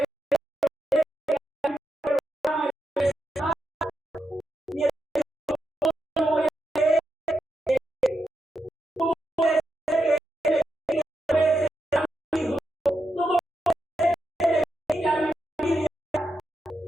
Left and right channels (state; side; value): normal; both; correlation 0.86